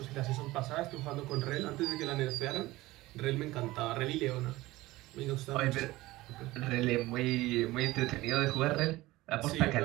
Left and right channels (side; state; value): left; quieter; 18.6 dB